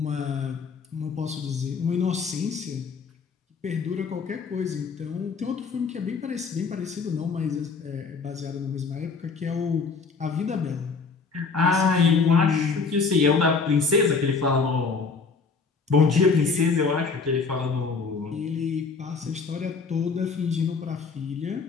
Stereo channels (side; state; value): right; quieter; 4.8 dB